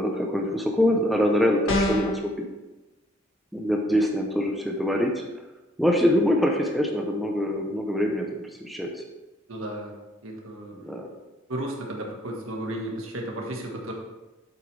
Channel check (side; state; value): both; normal; correlation 0.67